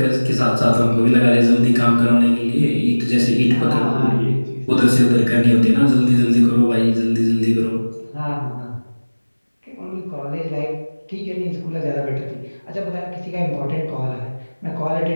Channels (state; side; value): inverted; both; correlation -1.00